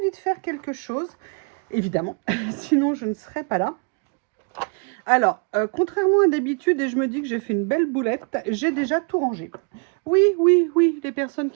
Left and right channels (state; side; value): quieter; left; 37.0 dB